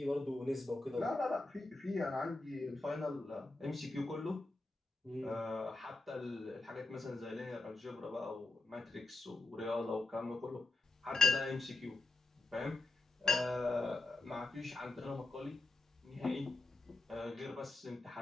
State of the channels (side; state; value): right; quieter; 3.0 dB